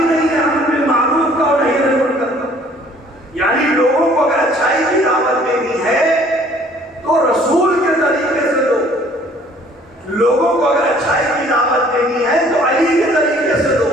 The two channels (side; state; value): both; normal; correlation 0.56